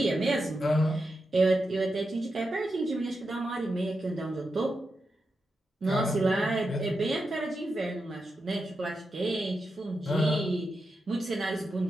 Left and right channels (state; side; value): normal; both; correlation 0.88